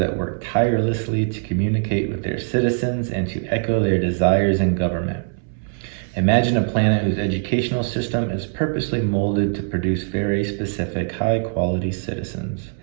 work tirelessly to communicate with their citizens and to echo their desires in government. Imagine a planet whose educational system is purposely molded to produce very specific, high-quality citizens.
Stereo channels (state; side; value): silent; left; 64 dB below the other